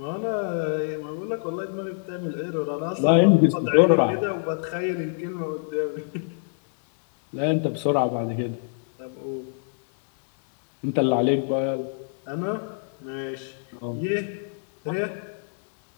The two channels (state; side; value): silent; right; 62 dB below the other